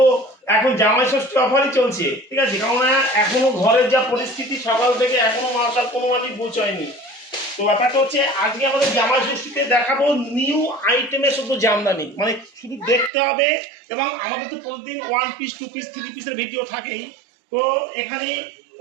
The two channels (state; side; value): drops out; left; at 13.1 s